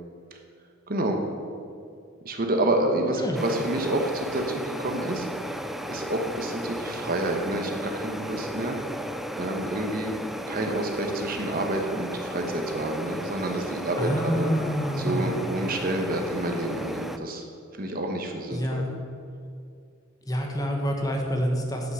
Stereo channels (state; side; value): normal; both; correlation 0.46